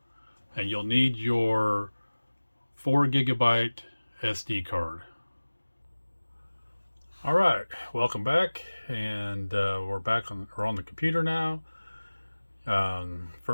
And you'll need your 4 GB SD card. All right, welcome back, and we're on the computer now.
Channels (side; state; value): both; inverted; correlation -1.00